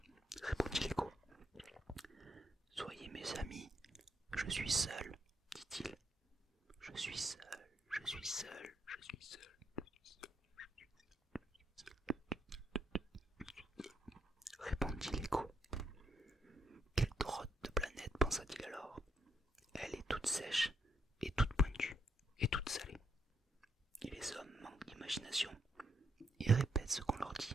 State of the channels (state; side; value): normal; both; correlation 0.77